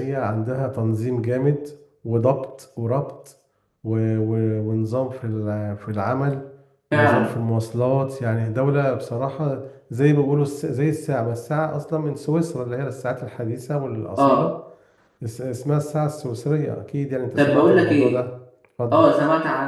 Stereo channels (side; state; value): both; identical; correlation 1.00